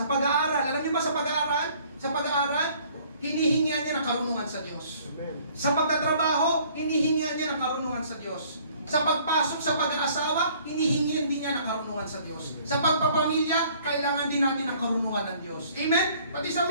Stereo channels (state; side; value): inverted; both; correlation -0.57